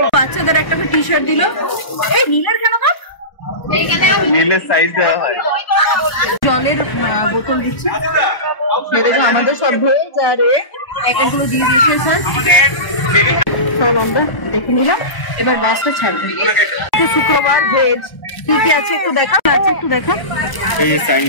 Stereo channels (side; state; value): right; late; 1.3 ms